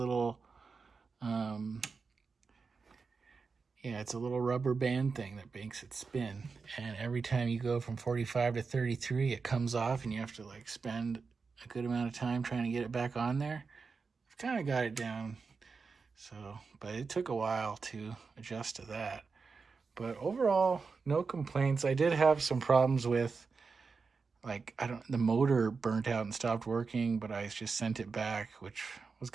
it's a little rubber band thing that makes it spin. And every time you go from 45 to 33, it comes off and you have to like spend a good amount of time trying to get it back on there. I've kind of got it down. So, but it took a while to adjust to that. But overall, no complaints. I did have some problems with the motor burnt out and stopped working, but I just sent it back, which was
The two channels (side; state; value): left; quieter; 4.8 dB